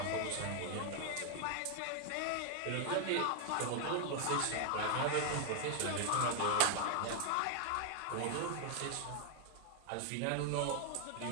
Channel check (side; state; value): both; different; correlation 0.00